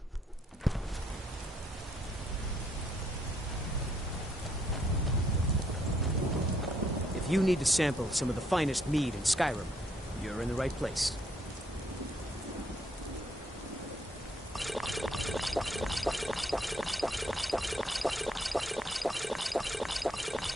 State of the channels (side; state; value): both; normal; correlation 0.71